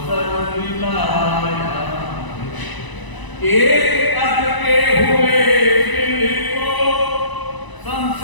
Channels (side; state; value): right; late; 1.0 ms